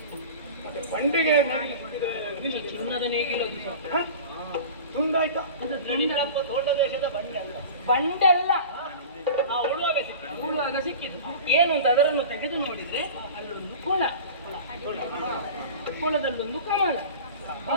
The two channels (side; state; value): both; inverted; correlation -0.36